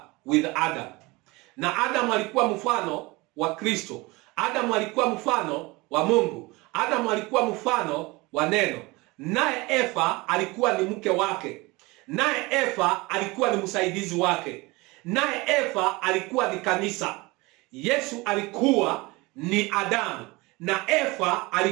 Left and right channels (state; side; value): quieter; left; 23.5 dB